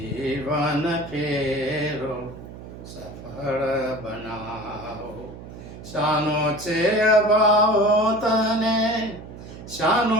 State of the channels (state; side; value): noise; right; hum, 14 dB below the sound